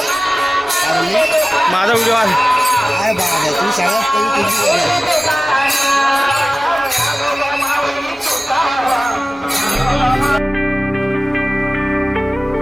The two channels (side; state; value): both; normal; correlation 0.97